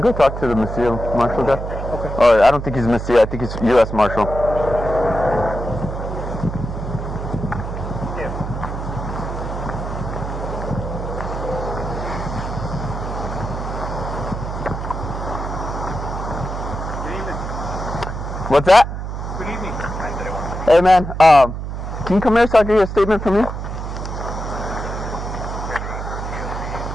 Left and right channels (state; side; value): noise; right; hum, 5 dB below the sound